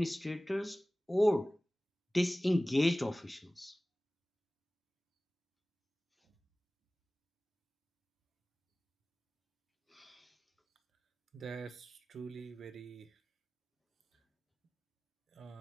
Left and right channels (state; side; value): normal; both; correlation 0.98